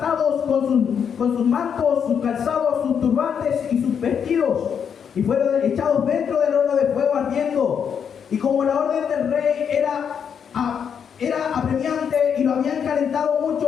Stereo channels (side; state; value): right; quieter; 7.5 dB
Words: con sus mantos, sus calzados, sus turbantes y sus vestidos, y fueron echados dentro del horno de fuego ardiendo. Y como la orden del rey era apremiante y lo habían calentado